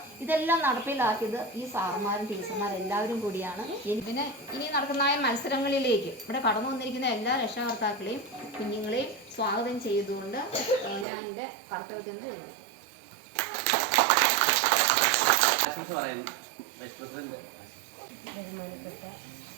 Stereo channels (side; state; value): left; drops out; at 11.1 s